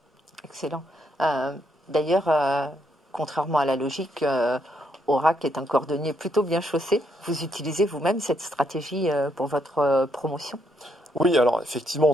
Excellent. D'ailleurs, contrairement à la logique, Oracle est un cordonnier plutôt bien chaussé. Vous utilisez vous-même cette stratégie pour votre promotion? Oui, alors effectivement,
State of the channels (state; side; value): normal; both; correlation 0.75